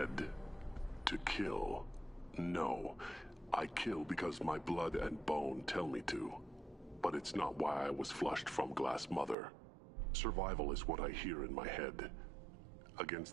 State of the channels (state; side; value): drops out; left; at 9.3 s